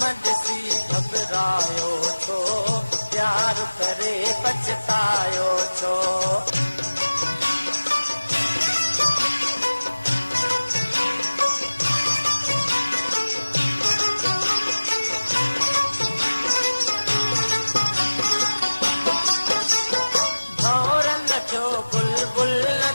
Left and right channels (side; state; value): both; inverted; correlation -1.00